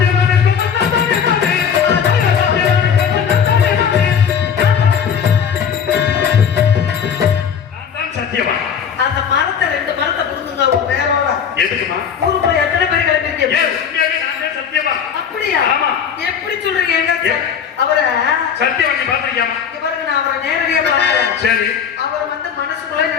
சத்தியமா. அந்த மரத்தை 2 மரத்தை புடுங்குங்க வேரோட. எதுக்குமா? ஊரு போய் எத்தனை பேர் கிளம்பிருக்கீங்க? உண்மையாவே நான் சத்தியமா. அப்படியா? ஆமா. எப்படி சொல்றீங்க? எங்க அவரை சத்தியமா நீ பாத்தீங்கம்மா? இவருக்கு நான் அவரை நேரடியா பார்த்தேன். சரி. அவர் வந்து மனசுக்குள்ள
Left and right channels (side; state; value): right; quieter; 7.5 dB